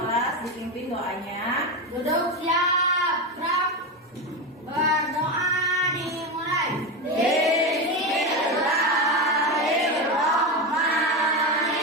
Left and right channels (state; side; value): normal; both; correlation 0.16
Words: dipimpin doanya. Duduk siap, gerak. Berdoa dimulai.